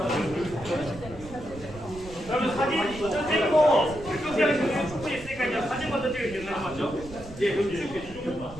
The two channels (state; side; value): noise; right; rumble, 16 dB below the sound